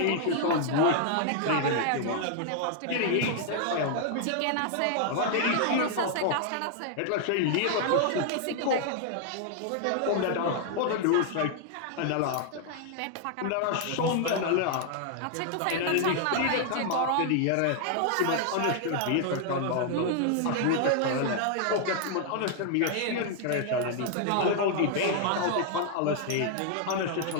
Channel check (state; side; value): different; both; correlation 0.00